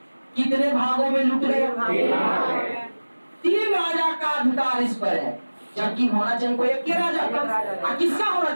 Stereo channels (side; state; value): both; inverted; correlation -1.00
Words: कितने भागों में लूट गया? 3 राजा का अधिकार इस पर है, जबकि होना चाहिए कोई एक राजा का। किसका होना